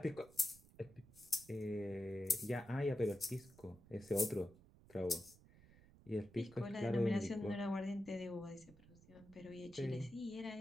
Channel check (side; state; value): right; noise; rumble, 22 dB below the sound